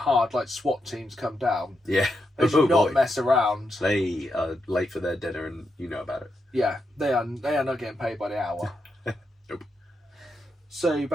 like SWAT teams come down, Yeah. they should not boy. mess around. They are late for their dinner, and you know about it. Yeah, they are not getting paid by the hour. Nope. So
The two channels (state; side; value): normal; both; correlation 0.84